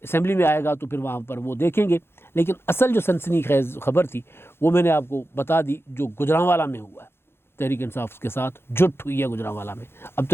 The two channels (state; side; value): late; right; 0.11 ms